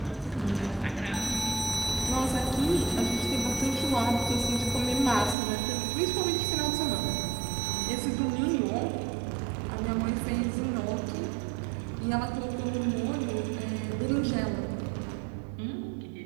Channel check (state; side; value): drops out; left; at 5.4 s